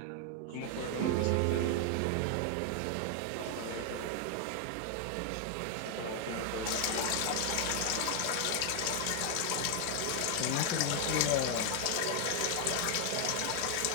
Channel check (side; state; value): both; different; correlation 0.00